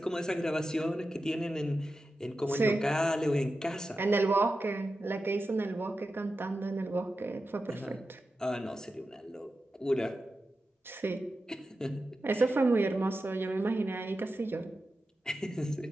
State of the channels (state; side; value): normal; both; correlation 0.91